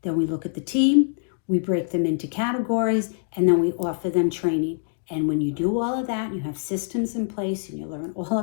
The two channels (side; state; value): right; silent; digital silence